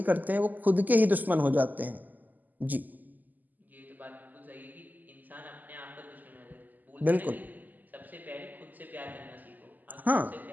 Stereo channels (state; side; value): late; left; 0.084 ms